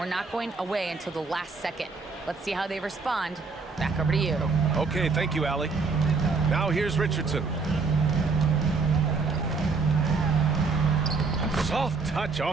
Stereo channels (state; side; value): quieter; left; 4.4 dB